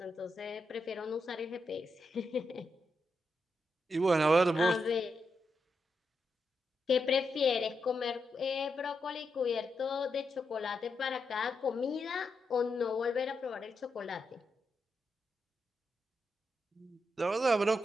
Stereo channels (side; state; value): both; normal; correlation 0.84